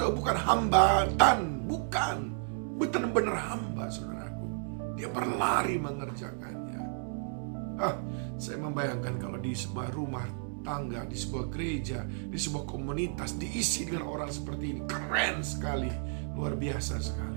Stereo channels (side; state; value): left; silent; 56 dB below the other